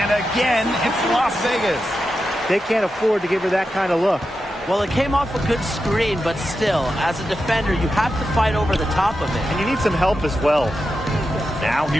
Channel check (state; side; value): normal; both; correlation 0.89